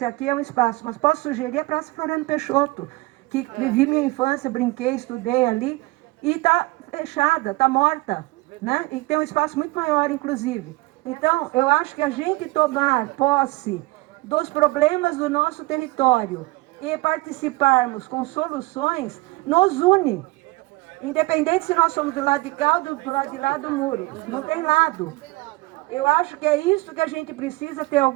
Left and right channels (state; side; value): quieter; left; 22.2 dB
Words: aqui é um espaço, mas posso sugerir a Praça Floriano Peixoto, que vivi minha infância, brinquei, estudei ali, e está fechada, está morta, né? E tem um espaço muito maior, inclusive. Então, eu acho que a gente tomar posse dos problemas do nosso território e participarmos com soluções, nos une. Independente se nós somos do lado de cá ou do lado de lá do muro. Não tem lado. Eu acho que é isso que a gente precisa, ter